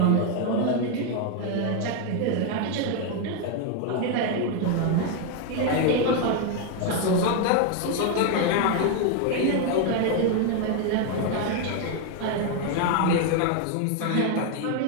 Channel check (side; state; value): both; different; correlation 0.01